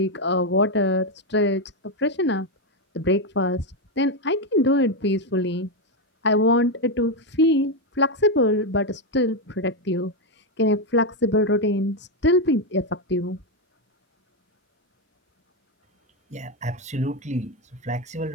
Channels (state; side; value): normal; both; correlation 0.05